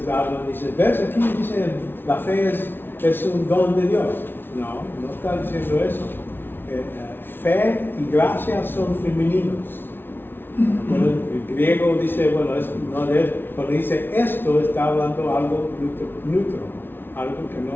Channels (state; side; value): late; right; 0.10 ms